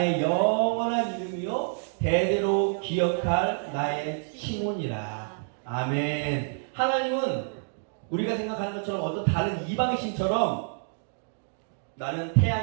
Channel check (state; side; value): silent; left; digital silence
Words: 영원한 이름이요 대대로 기억할 나의 칭혼이라. 아멘. 하나님은 우리가 생각하는 것처럼 어떤 다른 이방의 신처럼 나는